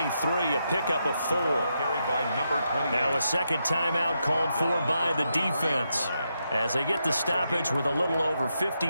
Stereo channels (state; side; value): inverted; both; correlation -0.83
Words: a pickup of 4. Carried by number 28. Now a second timeout called for by the defense, as they get the stoppage with a little over